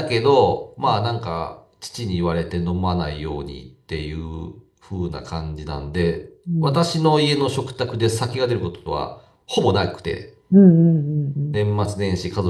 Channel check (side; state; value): both; identical; correlation 1.00